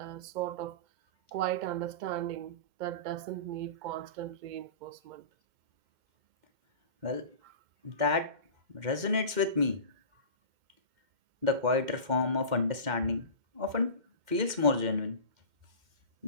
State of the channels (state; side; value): late; left; 2.1 ms